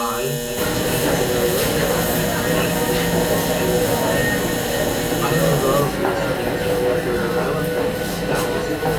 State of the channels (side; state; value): both; identical; correlation 1.00